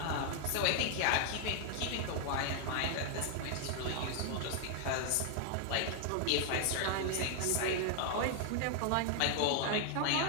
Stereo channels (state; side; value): different; both; correlation 0.00